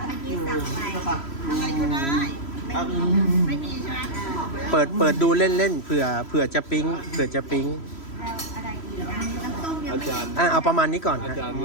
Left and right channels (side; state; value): right; late; 3.1 ms